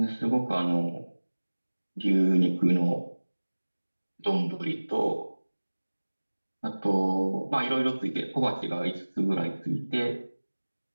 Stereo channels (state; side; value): inverted; both; correlation -1.00